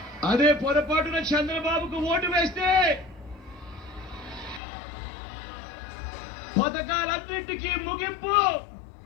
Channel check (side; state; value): right; drops out; at 4.6 s